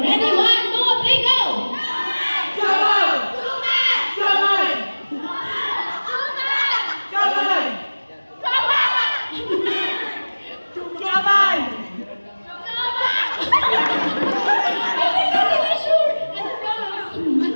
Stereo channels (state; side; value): inverted; both; correlation -1.00